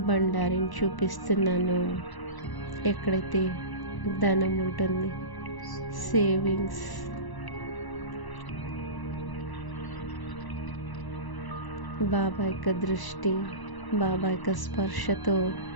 బండారిని చూపిస్తున్నాను. ఎక్కడైతే ధనం ఉంటుంది, సేవింగ్స్, బాబా యొక్క దృష్టి, బాబా యొక్క స్పర్శతో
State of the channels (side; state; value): right; late; 1.0 ms